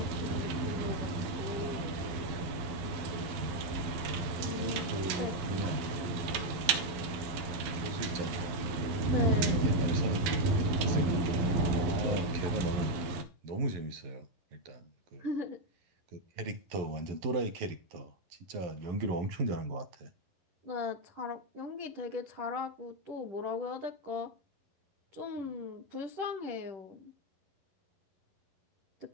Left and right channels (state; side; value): late; left; 12 ms